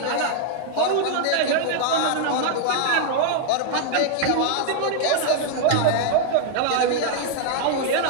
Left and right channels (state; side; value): different; both; correlation 0.00